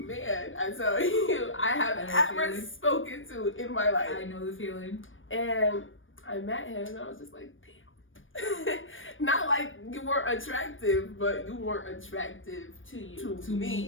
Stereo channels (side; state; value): right; late; 0.57 ms